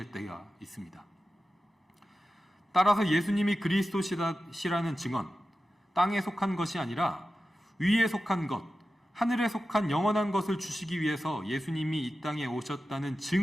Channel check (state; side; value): normal; both; correlation 0.93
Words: 때가 있습니다. 따라서 예수님이 그리스도시라는 증언, 땅에 속한 것이 아니라 위에 속한 것, 하늘에 속한 영원한 것을 주시기 위해서 예수님이 이 땅에 오셨다는